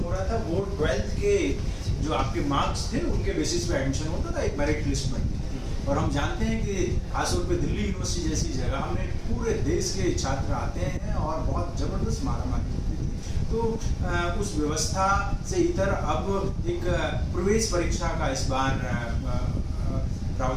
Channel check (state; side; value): identical; both; correlation 1.00